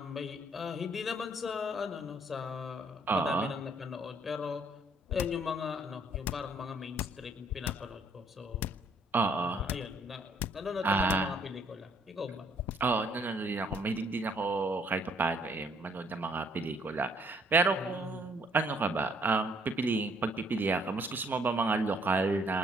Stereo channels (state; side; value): normal; both; correlation 0.64